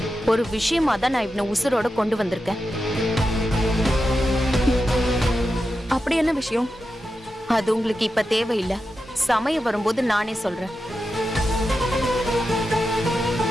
ஒரு விஷயமா தான் நான் இவனை உசுரோட கொண்டு வந்திருக்கேன். அப்படி என்ன விஷயம்? அது உங்களுக்கு இப்ப தேவையில்லை. சமயம் வரும்போது நானே சொல்றேன்.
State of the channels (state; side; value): normal; both; correlation 0.90